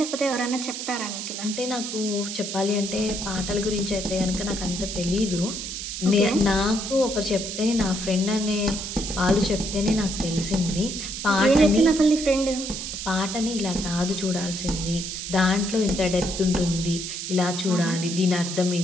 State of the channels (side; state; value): right; noise; hiss, 6 dB below the sound